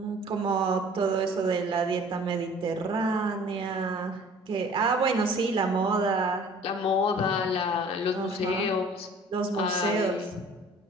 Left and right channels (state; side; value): normal; both; correlation 0.49